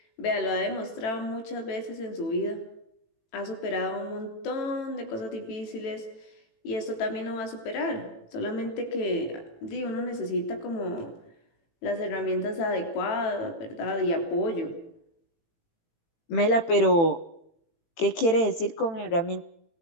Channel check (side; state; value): right; late; 18 ms